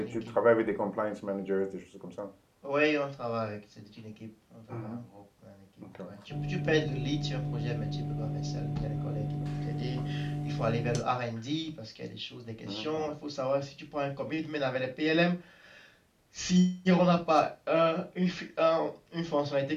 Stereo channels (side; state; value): both; identical; correlation 1.00